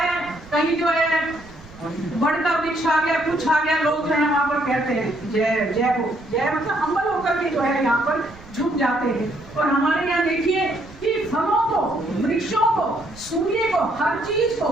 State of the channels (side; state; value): right; noise; rumble, 21 dB below the sound